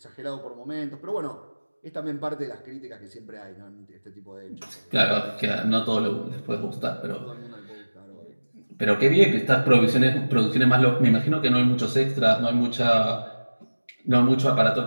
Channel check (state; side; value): inverted; both; correlation -1.00